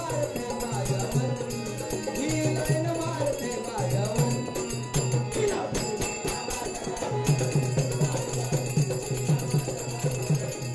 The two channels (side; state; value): both; identical; correlation 1.00